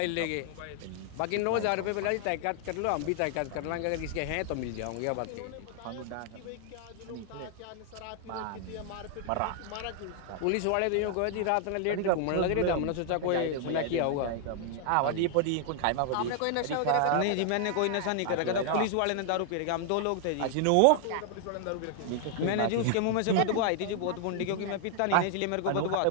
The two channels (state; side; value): different; both; correlation 0.00